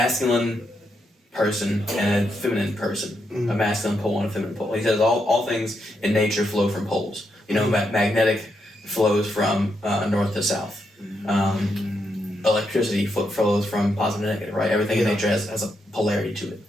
person and a feminine person, a masculine pole and a feminine pole. He says all things in nature flow from poles. Magnetic flows from north to south. electricity flows from positive and negative, right? Everything in nature has a polarity to it.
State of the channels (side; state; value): both; normal; correlation 0.81